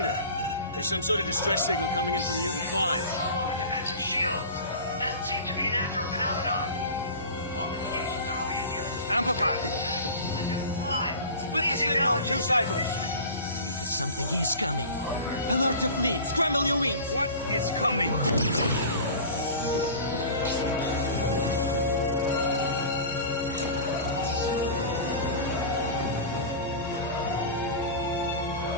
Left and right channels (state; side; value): inverted; both; correlation -0.35